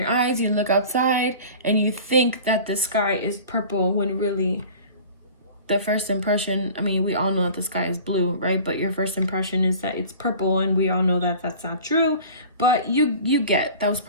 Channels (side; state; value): both; inverted; correlation -0.42